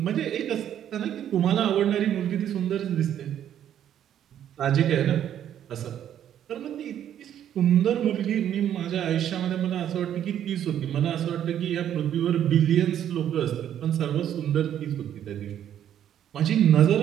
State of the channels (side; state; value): left; quieter; 10.3 dB